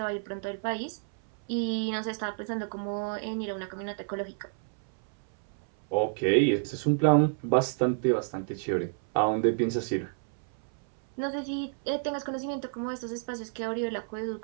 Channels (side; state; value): left; silent; 58 dB below the other